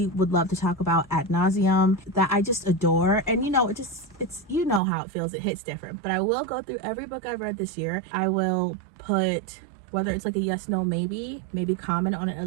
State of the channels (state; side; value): drops out; left; at 4.8 s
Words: would love to talk about ad nauseum, that I just adore. And you know, it's you know how it feels, it hits different. But I will go through every book I've read this year. I will put, whether it's like a yes, no, maybe comment on it a